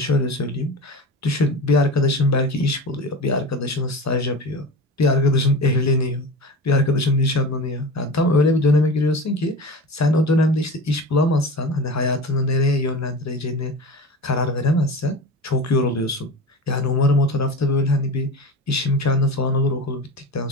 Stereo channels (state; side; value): normal; both; correlation 0.30